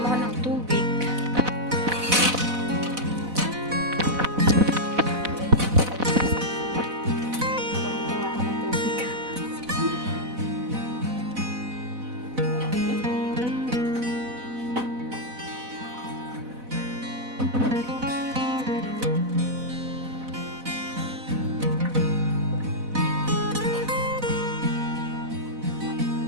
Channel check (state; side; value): late; left; 4.0 ms